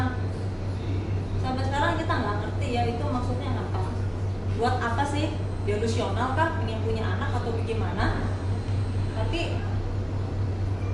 Sampai sekarang kita nggak ngerti ya itu maksudnya apa. Buat apa sih? Delusional kah? Pengen punya anak atau bagaimana? Tapi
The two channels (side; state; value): both; identical; correlation 1.00